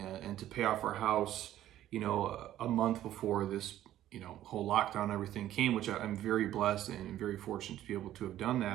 and to pay off our house a month before this whole lockdown and everything came, which I'm very blessed and very fortunate to be able to have done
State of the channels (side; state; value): left; quieter; 12.8 dB